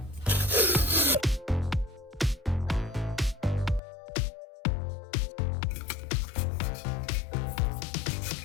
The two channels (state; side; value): drops out; right; at 3.8 s